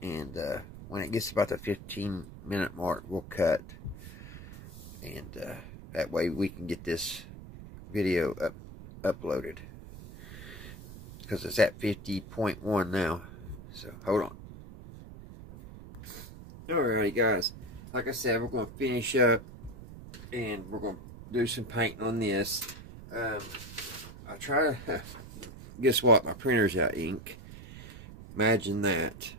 And when it gets about the 15-minute mark, we'll cut. And that way we can get this video uploaded. Because it's at 50.1 now. So, hold on. Alrighty, guys. like I said, we're going to finish up and we're going to do some painting on this. I try to, guess what, my printer's out of ink. Imagine that.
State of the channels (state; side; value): noise; right; rumble, 14 dB below the sound